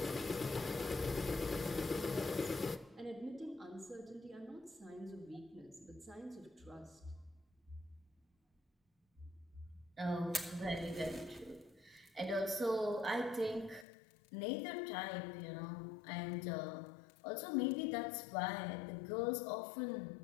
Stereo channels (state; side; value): drops out; right; at 13.9 s